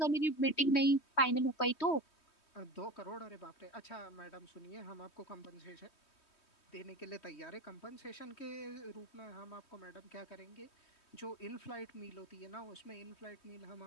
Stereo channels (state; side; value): late; right; 3.2 ms